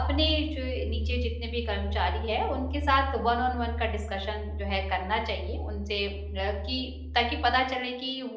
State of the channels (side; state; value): both; identical; correlation 1.00